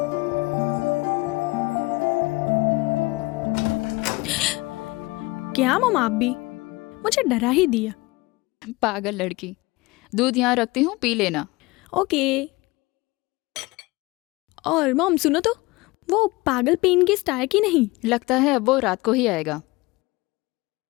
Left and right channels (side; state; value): right; quieter; 22.5 dB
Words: क्या मम, आप भी मुझे डरा ही दिया। पागल लड़की, दूध यहाँ रखती हूँ, पी लेना। ओके। और मॉम सुनो तो, वो पागल पेन गेस्ट आया कि नहीं? लगता है अब वो रात को ही आएगा।